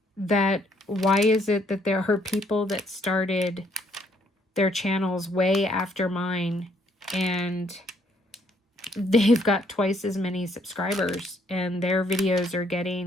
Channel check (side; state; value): both; normal; correlation 0.68